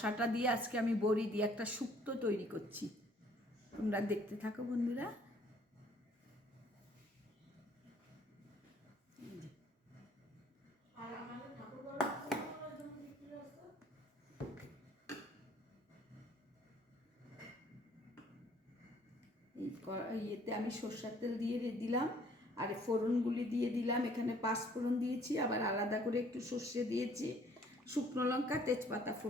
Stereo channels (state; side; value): normal; both; correlation 0.59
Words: দিয়ে আজকে আমি বড়ি দিয়ে একটা শুক্তো তৈরি করছি। তোমরা দেখতে থাকো বন্ধুরা। ইয়েতে আমি সর্ষের তেল দিয়ে দিলাম, আর ফোড়নগুলি দিয়ে দিলাম। এখানে 5 ফোড়ন দিয়েছি, আবার আলাদা করে একটু সর্ষে দিয়েছি, শুকনো লঙ্কা, তেজপাতা